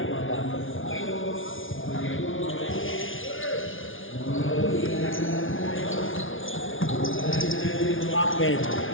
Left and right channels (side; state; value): right; late; 0.57 ms